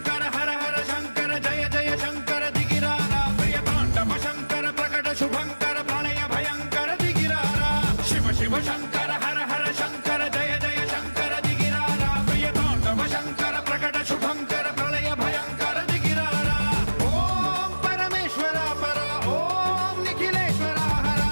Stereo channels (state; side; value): inverted; both; correlation -1.00